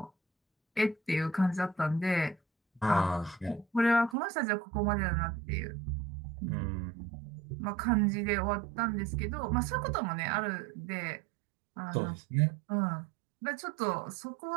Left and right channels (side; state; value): left; drops out; at 4.2 s